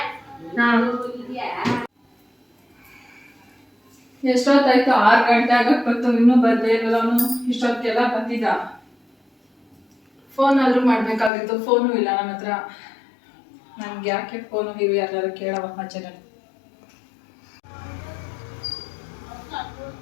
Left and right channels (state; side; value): drops out; right; at 11.3 s